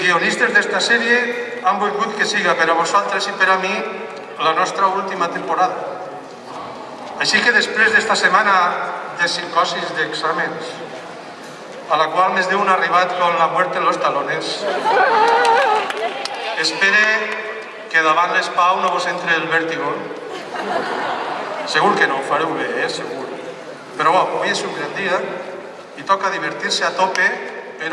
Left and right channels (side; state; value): both; identical; correlation 1.00